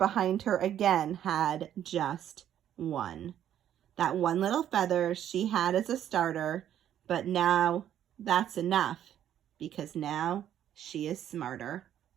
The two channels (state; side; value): quieter; left; 10.7 dB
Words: her again had just one. That one little feather she had as a starter, but now that's enough because now she is smarter.